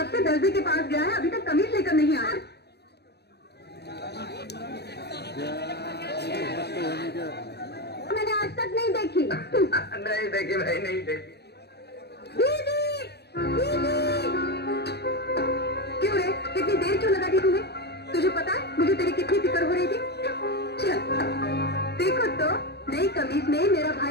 से दर्जी के पास गया है, अभी तक कमीज लेकर नहीं आया। मैंने आज तक नहीं देखी। नहीं देखी भाई, नहीं देखी। दीदी, दीदी। क्यों रे, इतनी देर क्यों लगा दी तुम्हें? तुझे पता है मुझे तेरी कितनी फिक्र हो रही थी। चल देखो तो नई कमीज में मेरा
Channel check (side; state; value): right; late; 0.48 ms